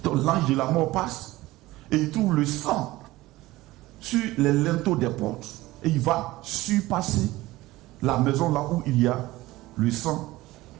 Donc l'ange de la mort passe et il trouve le sang sur les linteaux des portes et il va surpasser la maison là où il y a le sang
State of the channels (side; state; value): left; quieter; 18.3 dB